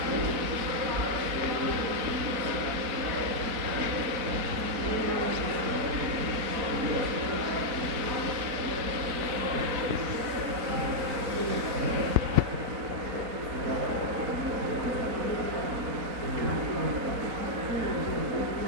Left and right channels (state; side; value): late; left; 4.0 ms